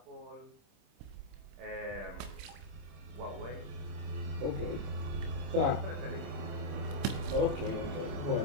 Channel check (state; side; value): late; left; 26 ms